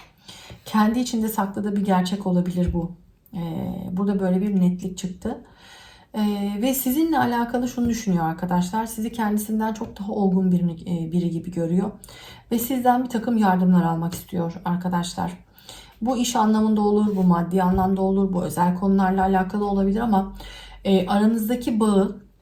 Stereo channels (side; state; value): both; identical; correlation 1.00